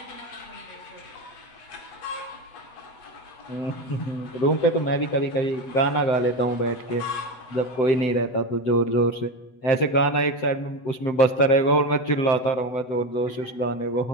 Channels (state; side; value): late; right; 7.9 ms